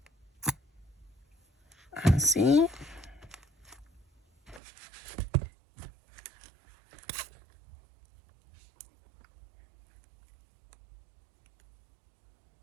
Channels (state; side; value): drops out; left; at 4.6 s